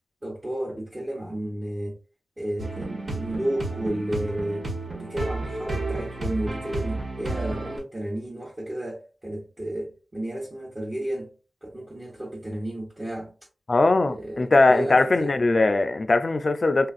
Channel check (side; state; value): both; normal; correlation 0.95